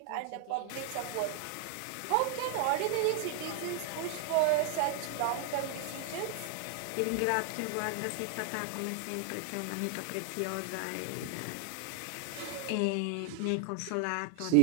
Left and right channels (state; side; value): different; both; correlation 0.00